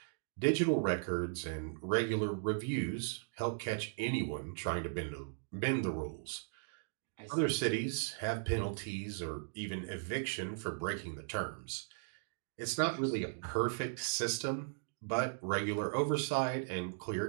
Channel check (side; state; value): left; silent; digital silence